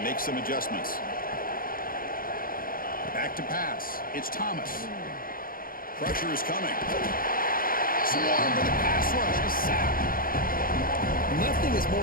makes some adjustments. Back to pass. It's Thomas. Pressure is coming. Swarm with a pass rush. A sack. Nothing is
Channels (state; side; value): late; right; 0.42 ms